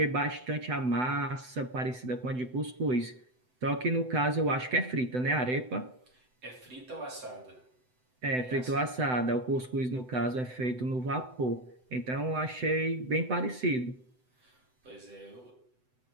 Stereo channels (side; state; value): left; late; 7.9 ms